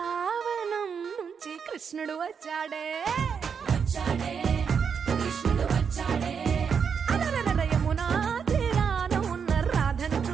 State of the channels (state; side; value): quieter; left; 6.6 dB